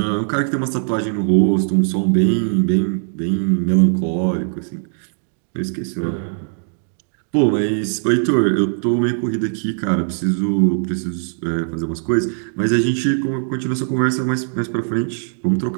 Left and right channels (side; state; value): left; silent; 66 dB below the other